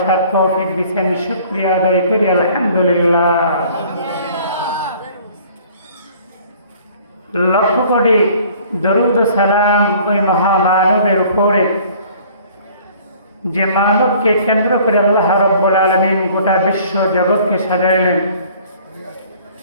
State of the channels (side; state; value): both; inverted; correlation -0.53